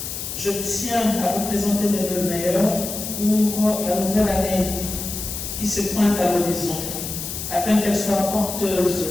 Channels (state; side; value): noise; left; hiss, 6 dB below the sound